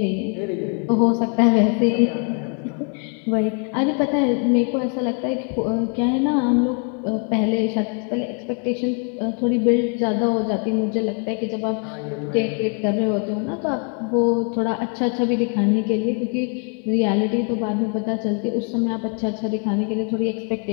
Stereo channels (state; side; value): quieter; right; 38.8 dB